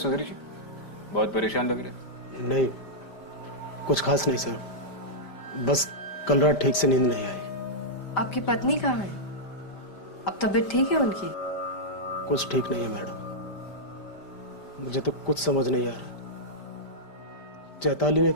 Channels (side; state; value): right; late; 5.1 ms